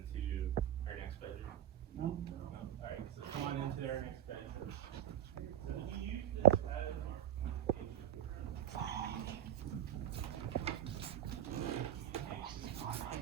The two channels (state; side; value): quieter; left; 10.7 dB